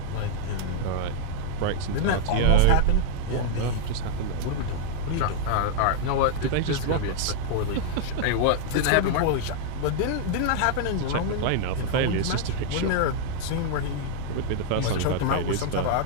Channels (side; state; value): both; different; correlation -0.01